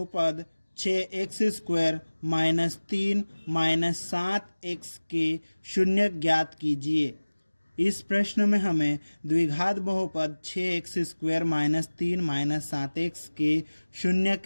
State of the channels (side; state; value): both; inverted; correlation -1.00